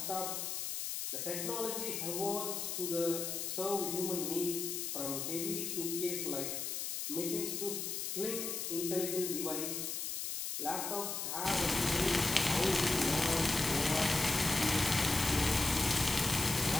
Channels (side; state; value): left; noise; hiss, 3 dB below the sound